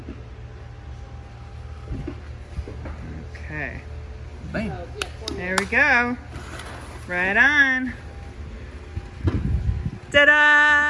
Okay. Bam. There we go. Right on.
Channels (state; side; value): identical; both; correlation 1.00